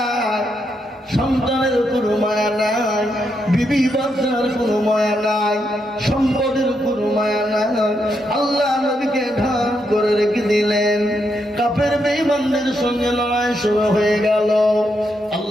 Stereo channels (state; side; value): normal; both; correlation 0.80